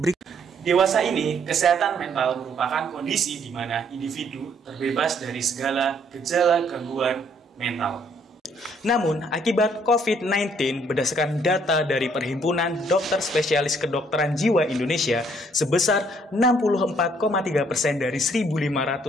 Dewasa ini, kesehatan mental merupakan kondisi di mana individu terbebas dari segala gejala gangguan mental. Namun, akibat COVID-19, berdasarkan data dari Perhimpunan Dokter Spesialis Kedokteran Jiwa Indonesia, sebesar 64,3% dari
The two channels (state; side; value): normal; both; correlation 0.65